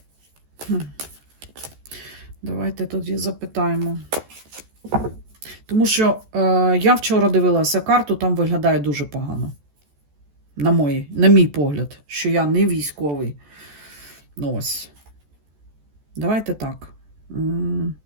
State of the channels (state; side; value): late; left; 14 ms